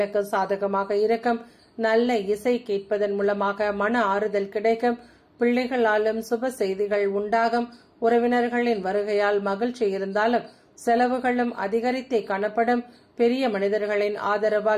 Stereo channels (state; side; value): identical; both; correlation 1.00